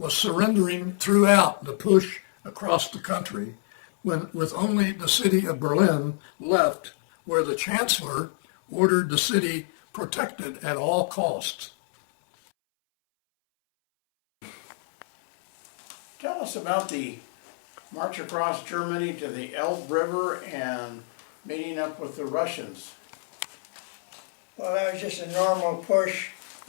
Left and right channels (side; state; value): right; silent; 61 dB below the other